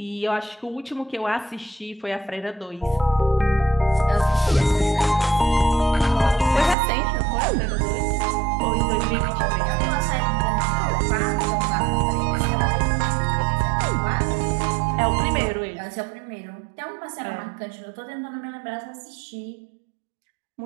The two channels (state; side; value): drops out; left; at 6.8 s